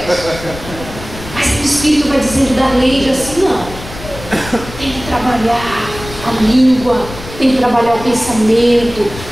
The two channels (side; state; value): left; noise; rumble, 13 dB below the sound